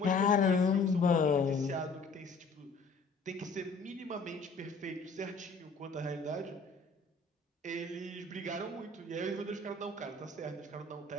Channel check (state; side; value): quieter; right; 3.9 dB